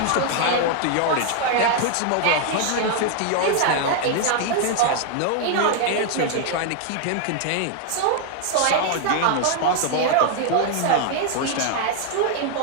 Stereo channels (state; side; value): different; both; correlation 0.00